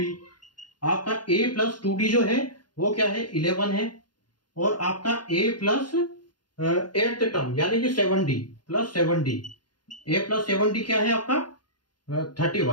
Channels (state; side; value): late; right; 0.71 ms